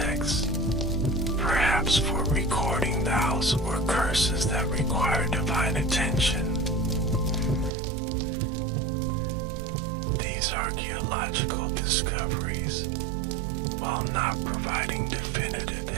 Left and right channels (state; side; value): drops out; left; at 7.7 s